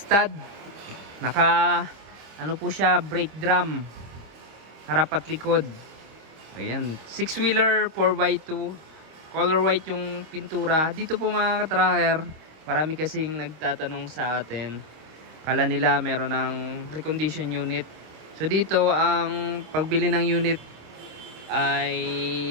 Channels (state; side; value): late; left; 26 ms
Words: Naka po siya, brake drum, harap at likod. Ayan, 6-wheeler 4x2, color white yung pintura. Dito po mga ka-tracker, marami kasing nagtatanong sa atin, kala nila meron ng recondition unit. So dito ang pagbili ng unit ay